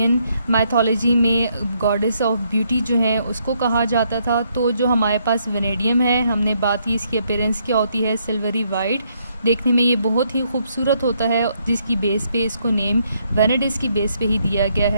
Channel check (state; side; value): inverted; both; correlation -0.73